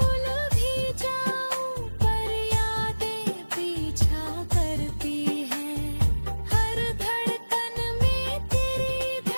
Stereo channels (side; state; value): both; inverted; correlation -1.00